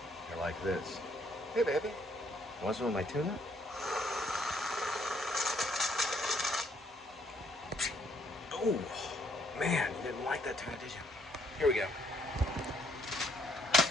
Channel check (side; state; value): both; normal; correlation 0.68